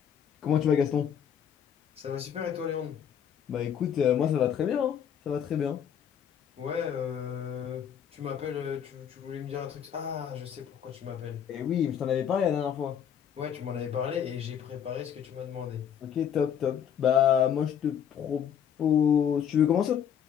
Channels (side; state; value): right; quieter; 8.6 dB